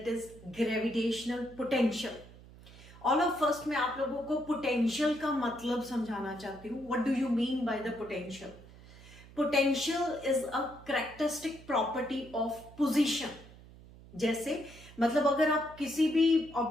is gravitational potential. All of first मैं आप लोगों को पोटेंशियल का मतलब समझाना चाहती हूँ। What do you mean by the potential? Potential is a characteristic property of position. जैसे मतलब अगर आप किसी भी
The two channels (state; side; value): noise; right; hum, 20 dB below the sound